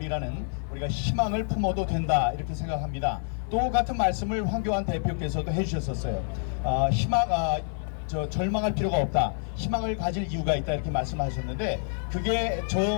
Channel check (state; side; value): silent; right; 58 dB below the other